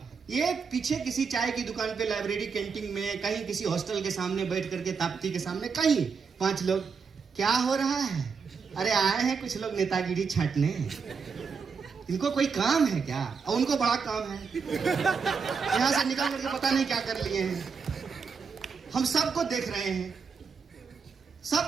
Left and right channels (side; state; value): left; quieter; 5.5 dB